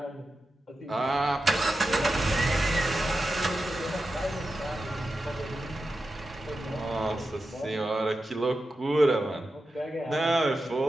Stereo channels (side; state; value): both; normal; correlation 0.91